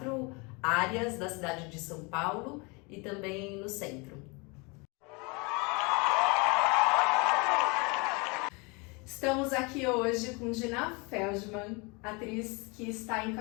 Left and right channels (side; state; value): right; quieter; 29.3 dB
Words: áreas da cidade de São Paulo e também no centro. Estamos aqui hoje com Dina Feldman, atriz que está